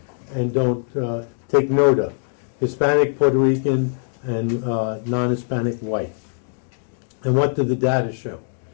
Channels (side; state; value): right; silent; digital silence